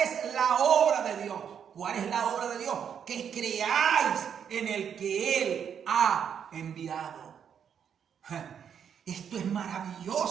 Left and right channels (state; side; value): quieter; left; 8.0 dB